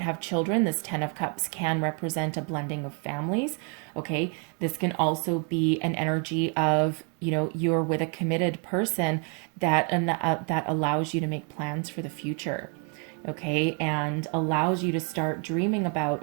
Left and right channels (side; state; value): left; quieter; 38.5 dB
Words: have children. This Ten of Cups can represent a blending of families. Okay, this can also be an energy of, you're with a committed person that allows you to make plans for the future. Okay, and allows you to start dreaming about